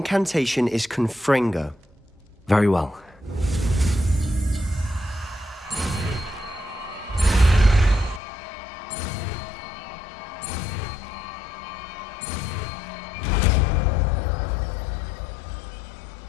is Confringo. Very well.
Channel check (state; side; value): drops out; right; at 8.2 s